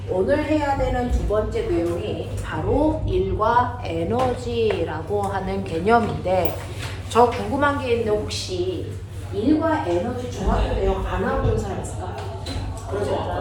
오늘 해야 되는 두 번째 내용이 바로 일과 에너지라고 하는 개념인데, 저 궁금한 게 있는데 혹시 일과 에너지 중학교 내용 안 하고 온 사람 있을까? 그러지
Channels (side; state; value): both; identical; correlation 1.00